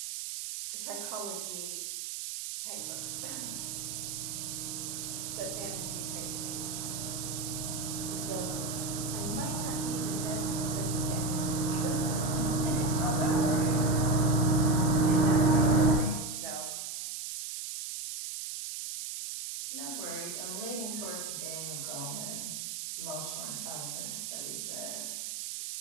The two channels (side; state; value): right; noise; hiss, 5 dB below the sound